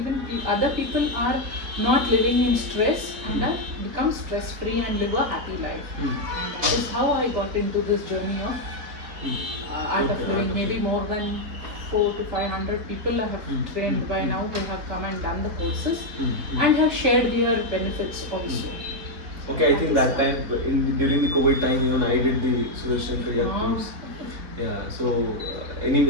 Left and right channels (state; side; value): late; left; 4.0 ms